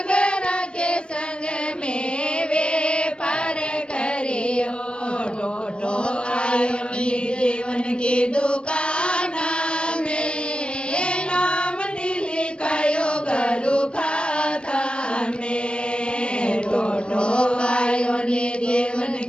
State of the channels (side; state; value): right; late; 0.056 ms